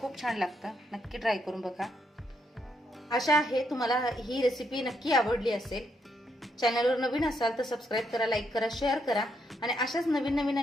छान लागतं, नक्की ट्राय करून बघा. आशा आहे तुम्हाला ही रेसिपी नक्की आवडली असेल. चॅनलवर नवीन असाल तर सबस्क्राईब करा, लाईक करा, शेअर करा आणि अशाच नवीन नवीन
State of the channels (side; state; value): both; normal; correlation 0.77